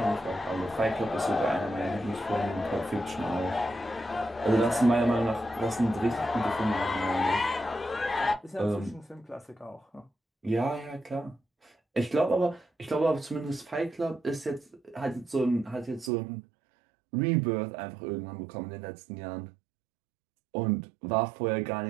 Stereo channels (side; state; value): left; drops out; at 16.1 s